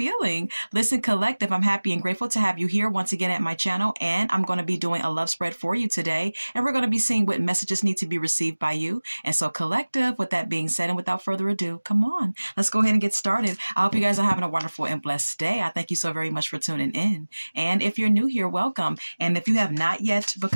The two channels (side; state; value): both; inverted; correlation -1.00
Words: Listen, Collective, I'm happy and grateful to have you here once again at my channel, and I'm going to be doing a love spread for you today, and we're going to be seeing what messages need to be received by you. And so, Collective, with that being said, and without further ado, come on, let's go ahead and get started. I hope you guys are having a wonderful and blessed day. I thank you so very much for tuning in. And if you're new here, welcome. And if you have not yet